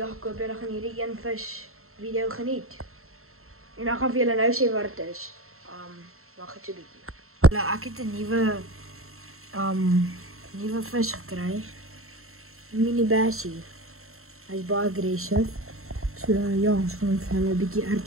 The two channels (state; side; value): late; left; 0.62 ms